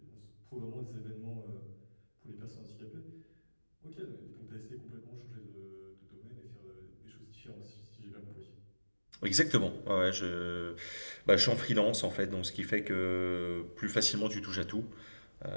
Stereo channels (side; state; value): both; inverted; correlation -1.00